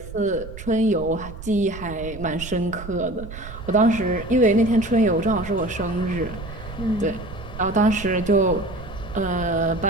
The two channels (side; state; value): right; noise; rumble, 12 dB below the sound